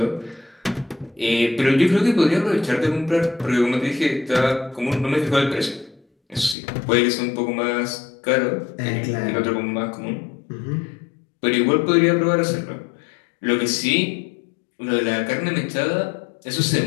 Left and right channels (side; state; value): right; drops out; at 6.6 s